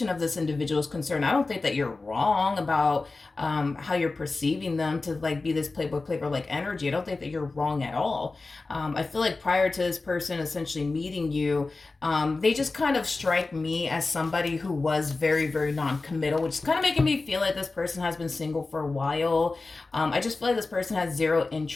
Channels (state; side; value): quieter; right; 3.6 dB